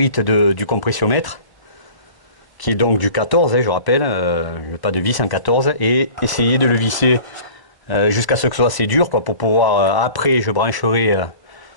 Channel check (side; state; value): right; late; 1.0 ms